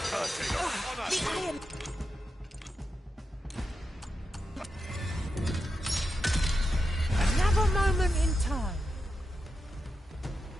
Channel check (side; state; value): both; normal; correlation 0.87